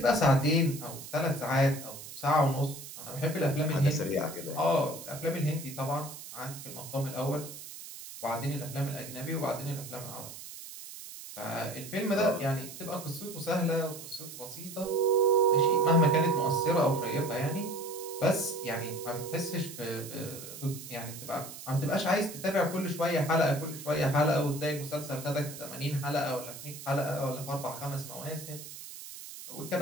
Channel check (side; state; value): right; noise; hiss, 12 dB below the sound